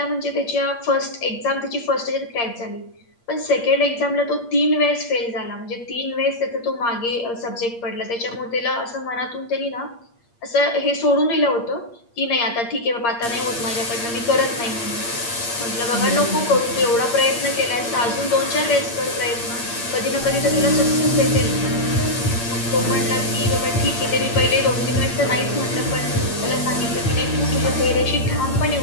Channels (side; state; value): right; late; 8.6 ms